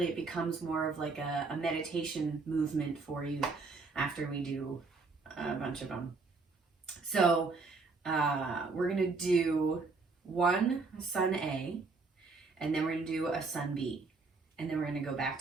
it becomes more of like a meditation movement for you after we do a bunch of them. So we're going to do one sun A, and then we're going to do a sun B. And then we're going to go back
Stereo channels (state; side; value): quieter; left; 4.1 dB